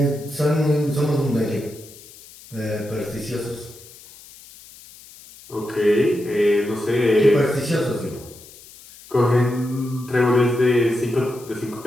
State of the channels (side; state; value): left; noise; hiss, 21 dB below the sound